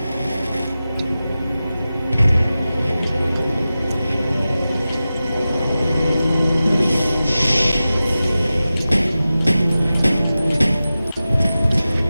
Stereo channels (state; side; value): inverted; both; correlation -0.95